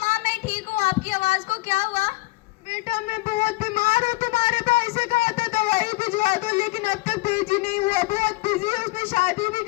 मैं ठीक हूँ, आपकी आवाज को क्या हुआ? बेटा मैं बहुत बीमार हूँ, तुम्हारे भाई से कहा था दवाई भिजवा दो, लेकिन अब तक भेजी नहीं हुआ। बहुत बिजी है, उसने शादी भी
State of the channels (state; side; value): quieter; right; 21.7 dB